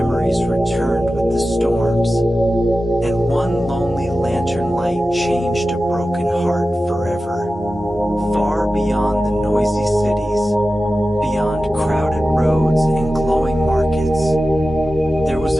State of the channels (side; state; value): both; normal; correlation 0.94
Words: returned with the storms, and one lonely lantern light changed a broken heart forever. Far beyond the noisy cities, beyond crowded roads and glowing markets, there was